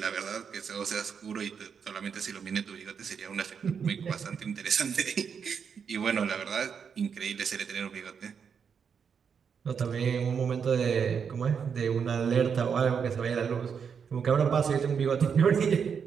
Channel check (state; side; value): quieter; left; 6.7 dB